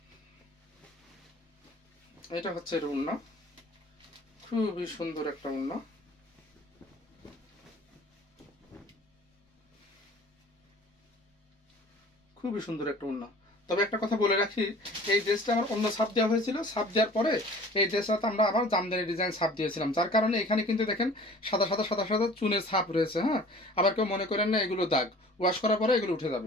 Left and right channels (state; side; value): normal; both; correlation 0.46